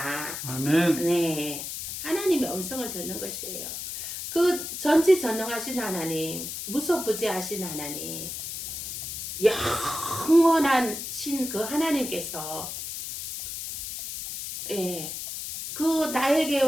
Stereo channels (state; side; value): noise; left; hiss, 6 dB below the sound